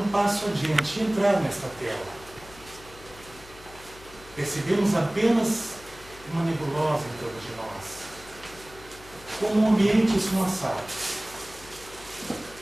passo adiante e entrar nesta tela. Percebemos apenas uma nebulosa em torno de nós, como um ambiente esfumaçado.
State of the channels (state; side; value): noise; left; hum, 20 dB below the sound